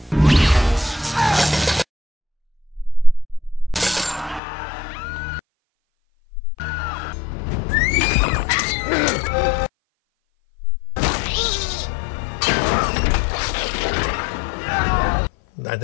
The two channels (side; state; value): right; drops out; at 4.4 s